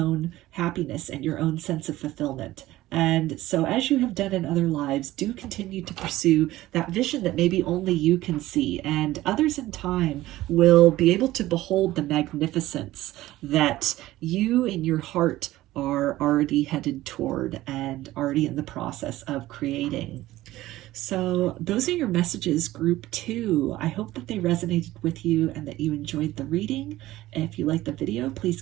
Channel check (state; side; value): quieter; left; 16.2 dB